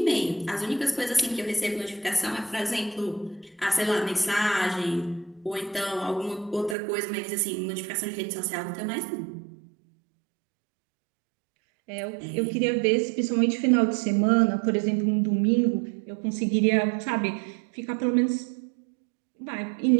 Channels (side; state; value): left; drops out; at 6.8 s